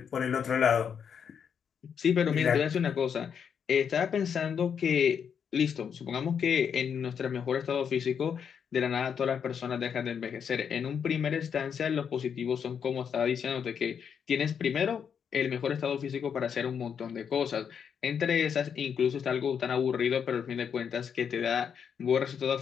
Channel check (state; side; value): quieter; right; 7.4 dB